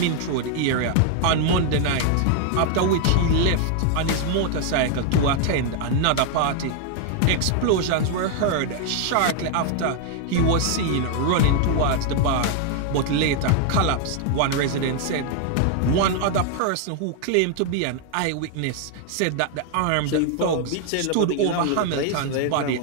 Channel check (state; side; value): different; both; correlation 0.00